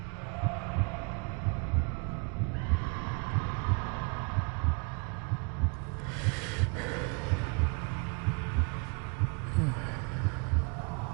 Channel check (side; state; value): left; quieter; 33.5 dB